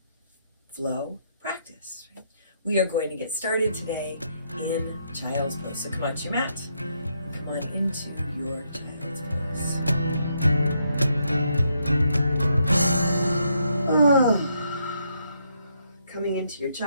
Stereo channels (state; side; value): inverted; both; correlation -0.76